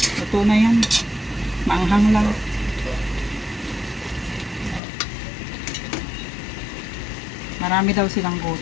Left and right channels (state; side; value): drops out; right; at 4.8 s